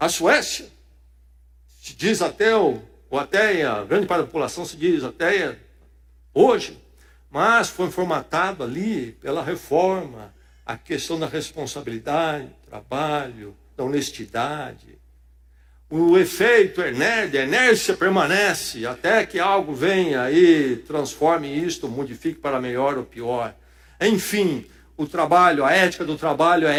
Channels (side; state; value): both; identical; correlation 1.00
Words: Suécia, se diz ateu, ou ateia, grande parte da população se diz ateia hoje, mas foi formatado ali pela reforma, a questão da responsabilidade, do trabalho, da honestidade. O efeito a inércia permanece até que algo venha e transforme isto, modifique para melhor ou pior. Enfim, o trabalho, a ética do trabalho é